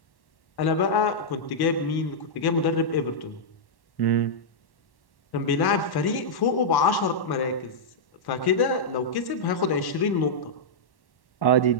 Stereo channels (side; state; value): right; late; 1.1 ms